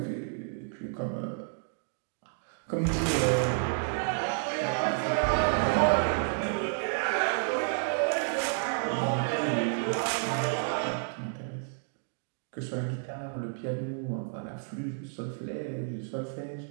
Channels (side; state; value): left; silent; digital silence